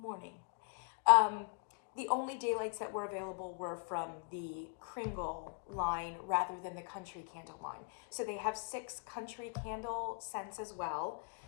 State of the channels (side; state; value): right; quieter; 39.1 dB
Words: The only daylights that were available were from the Kringle line rather than the country candle line. So they have 6 country candle scents as well.